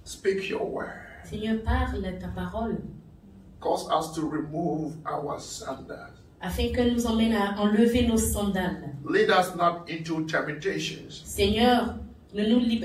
Speak your word. Seigneur, parle ta parole Cause us to remove our sandals. afin que nous emmène à enlever nos sandales. Lead us not into temptations, Seigneur, ne nous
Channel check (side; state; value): both; identical; correlation 1.00